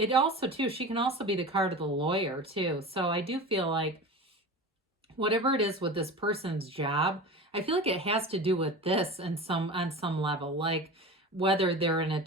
also, too, she can also be the card of the lawyer, too. So I do feel like whatever it is with this person's job, I feel like it has to do with this on some level. Like whether they're an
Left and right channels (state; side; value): normal; both; correlation 0.32